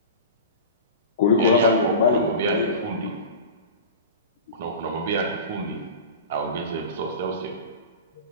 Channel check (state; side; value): inverted; both; correlation -0.31